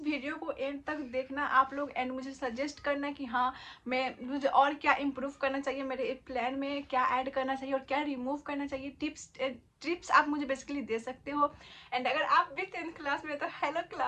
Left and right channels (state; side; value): identical; both; correlation 1.00